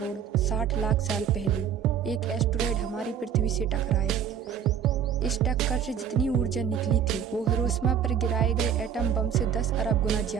60 लाख साल पहले एक एस्टेरॉयड हमारी पृथ्वी से टकराया। इस टक्कर से जितनी ऊर्जा निकली थी वो हिरोशिमा पर गिराए गए एटम बम से 10 अरब गुना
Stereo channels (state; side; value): quieter; left; 8.2 dB